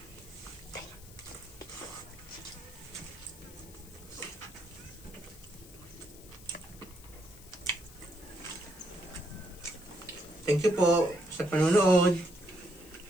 Thank you po sa panonood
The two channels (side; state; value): left; noise; hiss, 20 dB below the sound